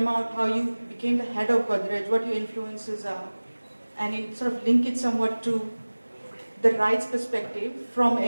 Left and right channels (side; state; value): both; inverted; correlation -1.00